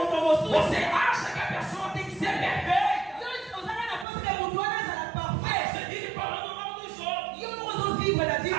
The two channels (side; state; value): left; drops out; at 4.0 s